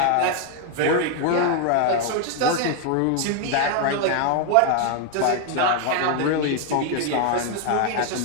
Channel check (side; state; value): both; different; correlation 0.01